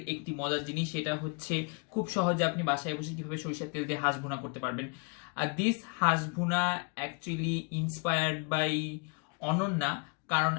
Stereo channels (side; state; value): right; quieter; 34.0 dB